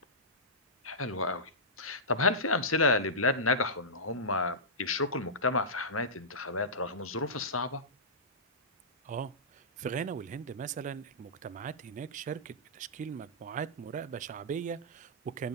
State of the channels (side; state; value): both; normal; correlation -0.16